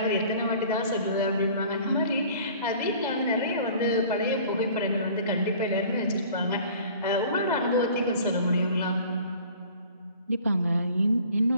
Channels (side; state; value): both; inverted; correlation -0.48